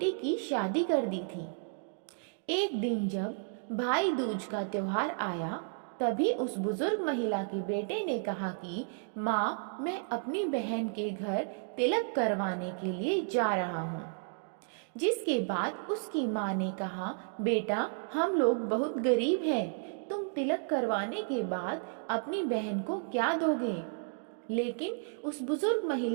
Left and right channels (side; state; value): left; silent; digital silence